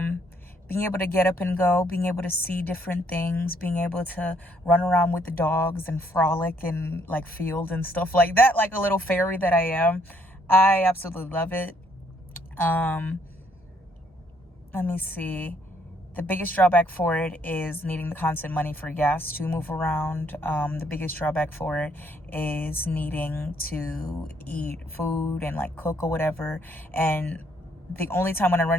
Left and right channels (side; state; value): both; normal; correlation 0.68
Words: being able to get up and go, being able to see different things, being able to run around with the dogs and frolic and like field and stuff like that, like a little fairy that I am, I absolutely love it. Let me see. The biggest drawback for it is needing the constant money for gas to move around. The biggest drawback for it is needing to eat food and like cook or whatever. And the only time when I run